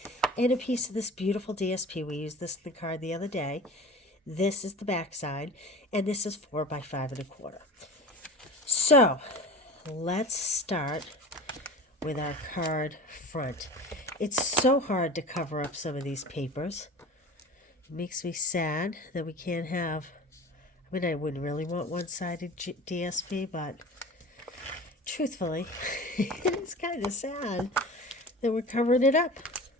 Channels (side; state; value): both; normal; correlation 0.37